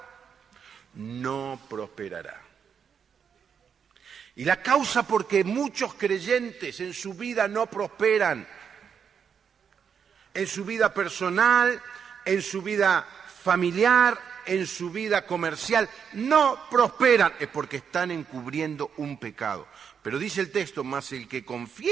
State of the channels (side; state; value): left; quieter; 7.2 dB